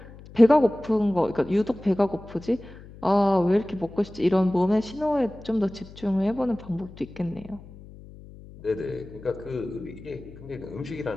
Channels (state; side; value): noise; left; hum, 18 dB below the sound